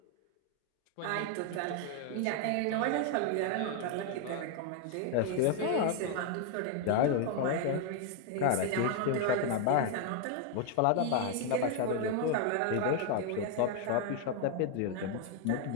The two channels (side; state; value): both; different; correlation 0.00